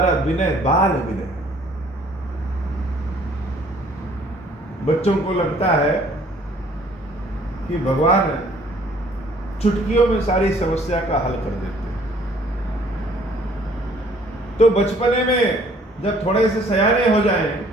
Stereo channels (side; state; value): both; normal; correlation 0.58